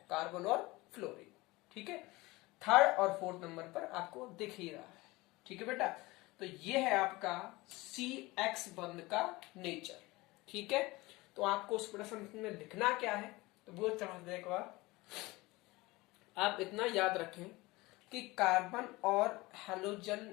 कार्बन और फ्लोरीन। ठीक है, थर्ड और फोर्थ नंबर पर आपको दिख ही रहा है। ठीक है बेटा, तो ये है आपका CX बंध का नेचर। ठीक है, तो आपको उस प्रश्न में लिखना क्या है, तो वो समझने के बाद आप इतना याद रखें कि कार्बन और हैलोजन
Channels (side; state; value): right; quieter; 21.4 dB